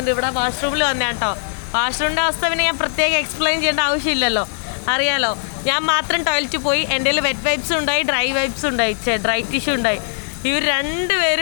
ഇവിടെ വാഷ്റൂമിൽ വന്നേ കേട്ടോ. വാഷ്റൂമിൻ്റെ അവസ്ഥ പിന്നെ ഞാൻ പ്രത്യേകം എക്സ്പ്ലെയിൻ ചെയ്യേണ്ട ആവശ്യമില്ലല്ലോ, അറിയാലോ. ഞാൻ മാത്രം ടോയ്ലറ്റിൽ പോയി. എൻ്റെ കയ്യിൽ വെറ്റ് വൈപ്സ് ഉണ്ടായി, ഡ്രൈ വൈപ്സ് ഉണ്ടായി, ഡ്രൈ ടിഷ്യൂ ഉണ്ടായി. ഇവർ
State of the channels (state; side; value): silent; right; digital silence